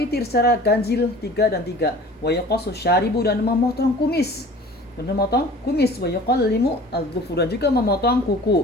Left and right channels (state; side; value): normal; both; correlation 0.44